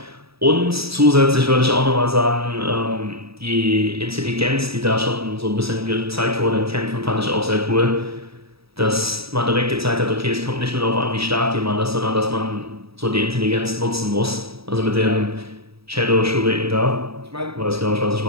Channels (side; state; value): left; late; 0.77 ms